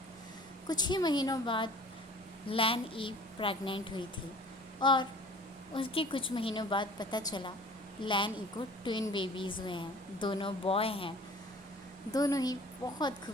कुछ ही महीनों बाद लैन ई प्रेग्नेंट हुई थी और उसके कुछ महीनों बाद पता चला लैन ई को ट्विन बेबीज़ हुए हैं। दोनों बॉय हैं, दोनों ही बहुत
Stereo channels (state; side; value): normal; both; correlation 0.47